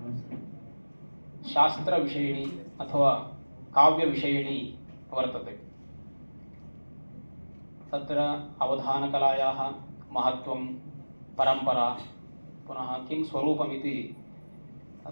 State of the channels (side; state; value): both; inverted; correlation -1.00